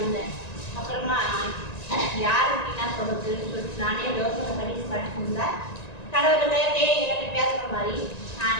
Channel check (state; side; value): late; right; 1.9 ms